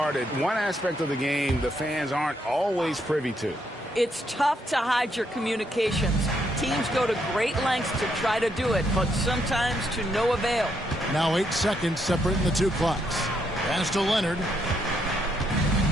One aspect of the game the fans aren't always privy to. It's tough to hide your communications. Teams go to great lengths to try to do it, but sometimes to no avail. Now 8 seconds separating the two clocks. Pass to Leonard.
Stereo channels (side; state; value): both; normal; correlation 0.76